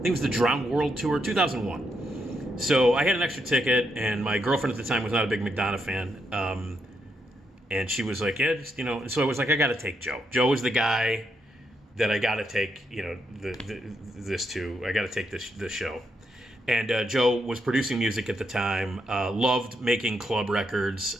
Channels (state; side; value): normal; both; correlation 0.79